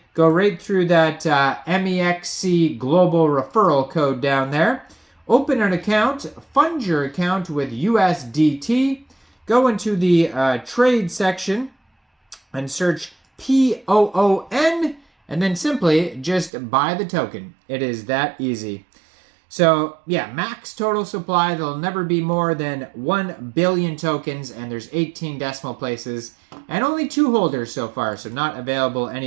go right through that MEXC Global referral code down there. Open an account, fund your account with USDT, go into the trade section and search POON, and then simply just buy the token. It is that easy. So yeah, max total supply. There'll never be more than 1 billion tokens, and there's 18 decimal places, and only 2 holders so far, so not available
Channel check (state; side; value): drops out; left; at 16.5 s